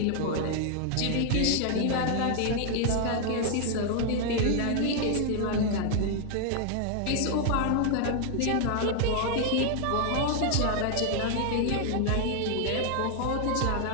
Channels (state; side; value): different; both; correlation 0.00